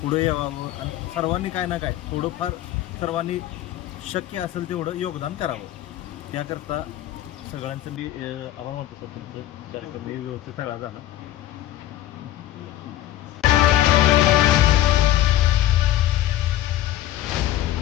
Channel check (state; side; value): quieter; right; 13.8 dB